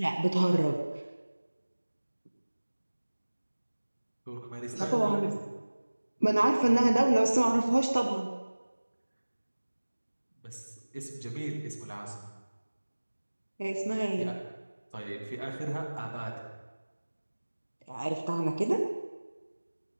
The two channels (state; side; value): inverted; both; correlation -1.00